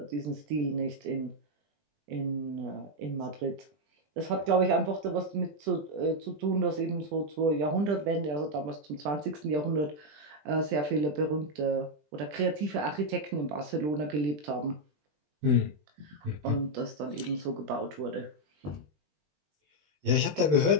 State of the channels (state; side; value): late; left; 20 ms